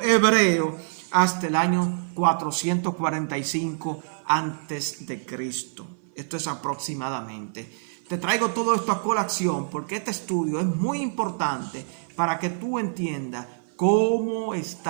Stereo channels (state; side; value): silent; left; 57 dB below the other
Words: hebreo hasta el año 445 antes de Cristo. Esto es aproximadamente. Te traigo todo esto a colación porque este estudio es muy importante para que tú entiendas cómo